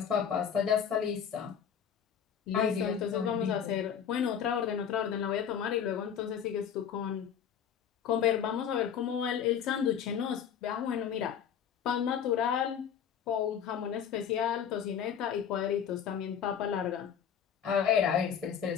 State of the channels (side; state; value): right; quieter; 8.2 dB